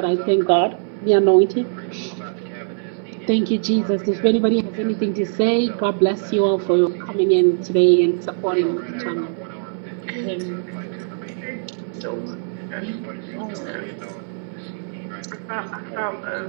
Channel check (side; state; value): left; silent; 62 dB below the other